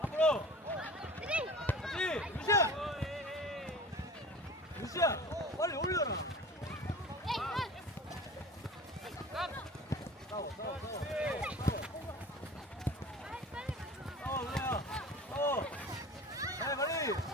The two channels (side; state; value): both; normal; correlation 0.40